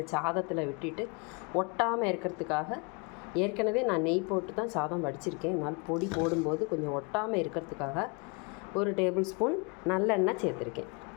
சாதத்தில் விட்டுட்டு ஒட்டாமல் இருக்கிறதுக்காக, ஏற்கனவே நான் நெய் போட்டு தான் சாதம் வடிச்சிருக்கேன், அதனால் பொடி போடும்போது கொஞ்சம் ஒட்டாமல் இருக்கிறதுக்காக 1 டேபிள் ஸ்பூன் நல்லெண்ணெய் சேர்த்துருக்கேன்.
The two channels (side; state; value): right; quieter; 32.3 dB